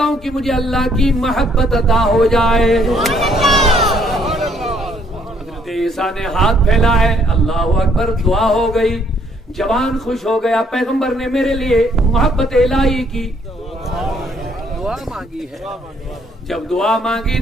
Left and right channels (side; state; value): both; normal; correlation 0.67